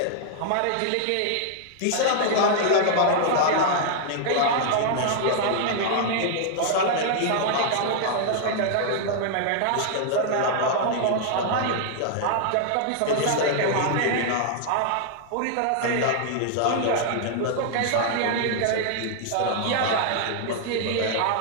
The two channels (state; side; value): different; both; correlation -0.01